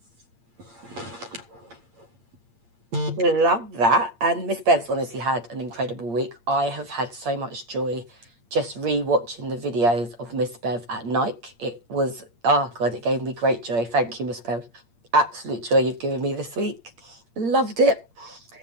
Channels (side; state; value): left; late; 8.6 ms